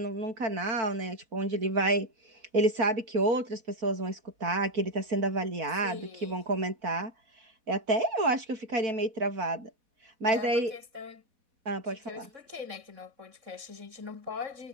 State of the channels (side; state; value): left; late; 4.1 ms